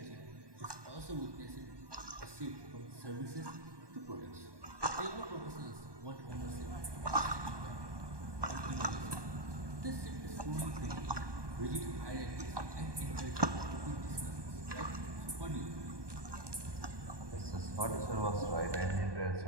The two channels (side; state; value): left; late; 1.2 ms